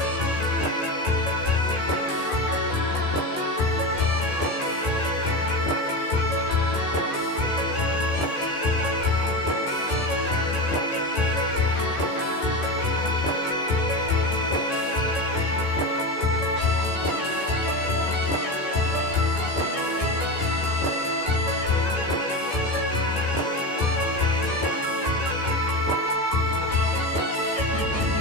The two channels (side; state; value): right; late; 14 ms